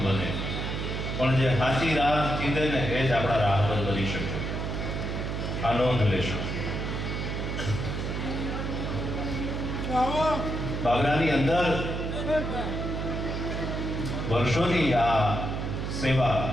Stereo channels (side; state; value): right; noise; hum, 3 dB below the sound